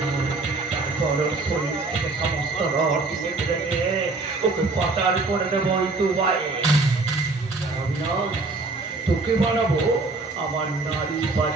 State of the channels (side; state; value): left; quieter; 3.5 dB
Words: তারপর শরীর থেকে সমস্ত রস রেখে ওকে পাচার করে দেবো দুবাইয়ে। তোকে বানাবো আমার নারী